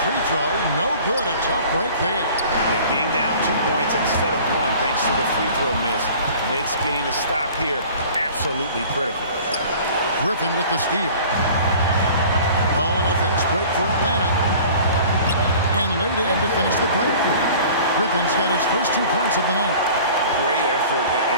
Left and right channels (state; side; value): inverted; both; correlation -0.46